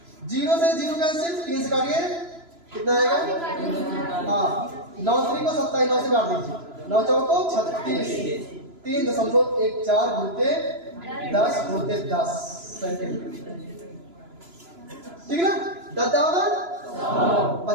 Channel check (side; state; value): left; late; 3.0 ms